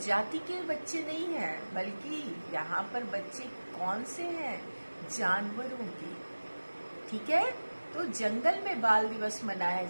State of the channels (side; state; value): both; inverted; correlation -1.00